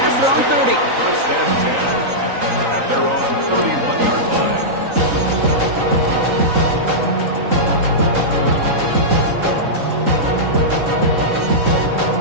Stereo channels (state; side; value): late; left; 3.9 ms